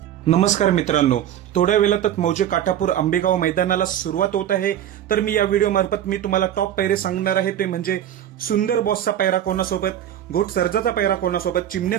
नमस्कार मित्रांनो, थोड्या वेळातच मौजे काठापूर आंबेगाव मैदानाला सुरुवात होत आहे। तर मी या व्हिडिओ मार्फत मी तुम्हाला टॉप पैरे सांगणार आहे, ते म्हणजे सुंदर बॉसचा पैरा कोणासोबत, घोट सर्जाचा पैरा कोणासोबत,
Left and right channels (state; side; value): quieter; left; 10.9 dB